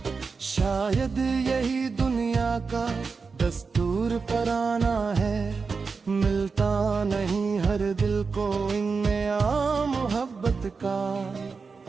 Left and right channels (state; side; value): quieter; left; 4.8 dB